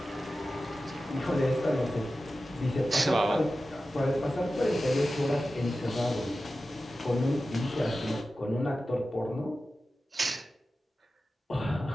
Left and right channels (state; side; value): normal; both; correlation 0.94